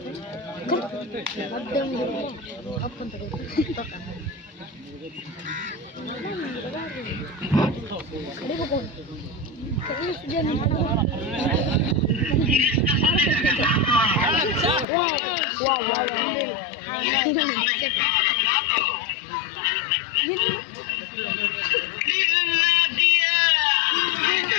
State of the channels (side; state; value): right; drops out; at 14.9 s